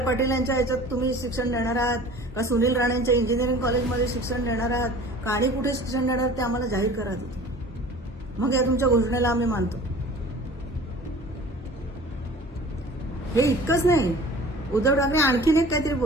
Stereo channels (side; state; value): both; normal; correlation 0.44